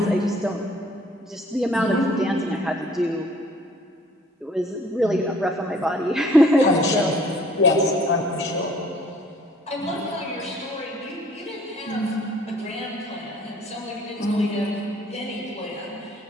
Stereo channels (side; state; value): both; normal; correlation 0.56